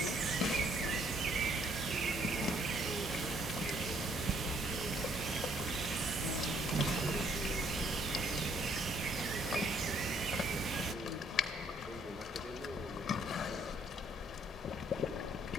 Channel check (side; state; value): both; normal; correlation 0.66